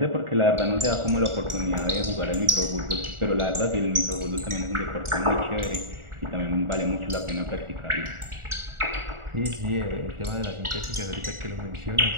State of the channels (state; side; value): late; left; 1.4 ms